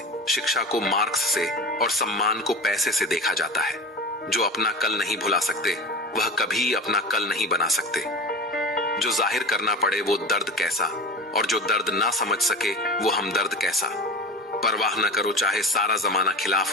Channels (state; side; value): normal; both; correlation 0.30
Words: शिक्षा को मार्क्स से और सम्मान को पैसे से देखा जाता है। जो अपना कल नहीं भुला सकते वह कभी अपना कल नहीं बना सकते। जो जाहिर करना पड़े वो दर्द कैसा, और जो दर्द ना समझ सके वो हमदर्द कैसा। परवाह न करो चाहे सारा जमाना